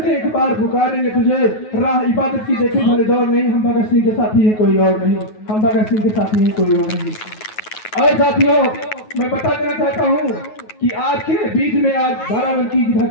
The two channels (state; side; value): late; right; 9.4 ms